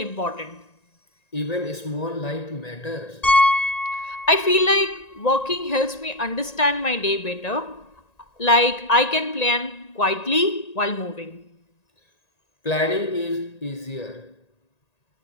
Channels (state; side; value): late; right; 1.9 ms